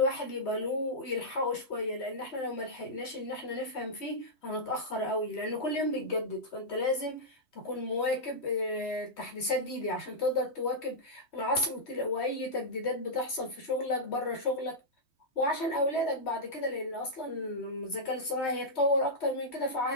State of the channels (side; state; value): right; late; 3.2 ms